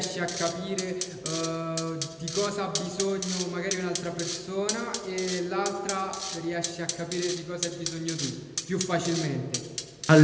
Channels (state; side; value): identical; both; correlation 1.00